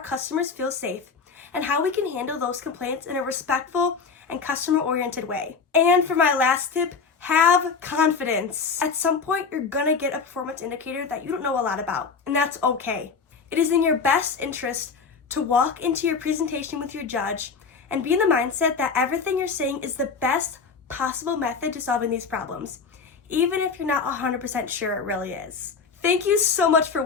feel safe and how we can handle those complaints in a respectful and customer-oriented way. And for my last tip, have confidence. At some point, you're gonna get a performance indicator that you don't know a lot about, and that's okay. It is in your best interest to walk into your presentation with your judge and be in the mindset that everything you're saying is the best possible method to solving these problems, even if you're not 100% sure it really is. Thank you so much for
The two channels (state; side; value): quieter; right; 5.2 dB